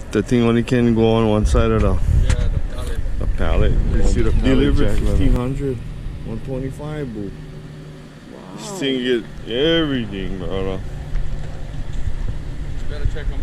thing only can go on one side of the Yeah, the pallet. pallet. You see the delivered jack, 1500, 125, boo. Wow. This thing get everything, brother. You better check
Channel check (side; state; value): both; identical; correlation 1.00